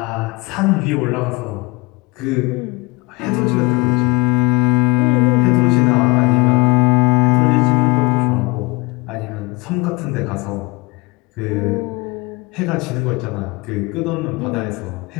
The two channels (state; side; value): quieter; right; 25.2 dB